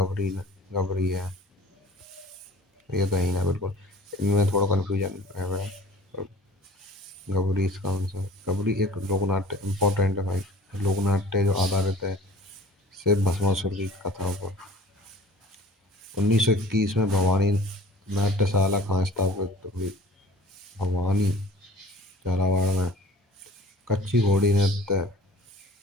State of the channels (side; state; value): both; normal; correlation 0.46